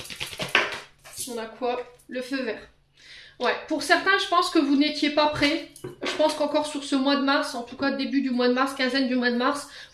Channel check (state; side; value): identical; both; correlation 1.00